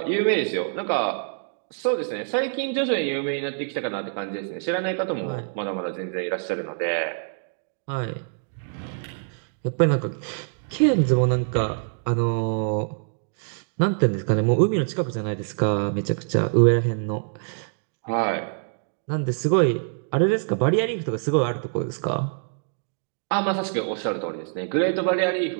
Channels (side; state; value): left; silent; digital silence